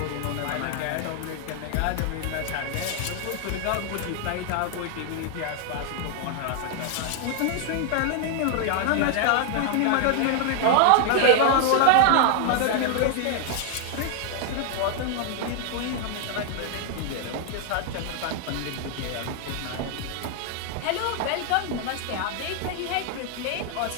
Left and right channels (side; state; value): both; different; correlation 0.00